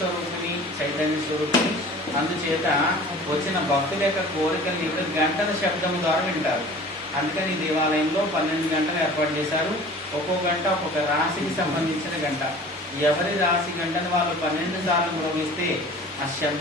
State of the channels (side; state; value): both; normal; correlation 0.44